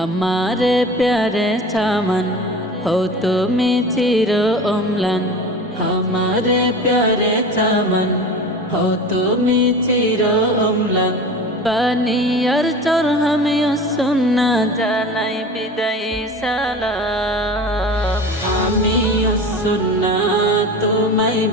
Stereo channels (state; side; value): normal; both; correlation 0.35